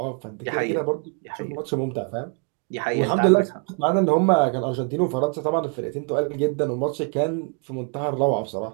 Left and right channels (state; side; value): quieter; left; 36.9 dB